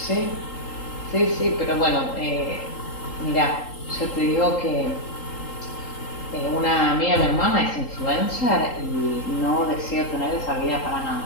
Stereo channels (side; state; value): right; late; 3.8 ms